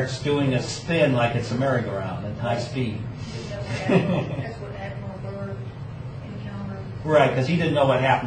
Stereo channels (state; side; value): identical; both; correlation 1.00